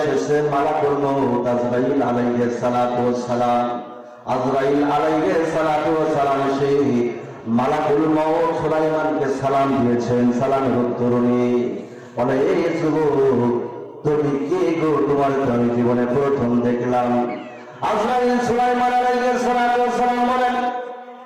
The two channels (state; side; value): identical; both; correlation 1.00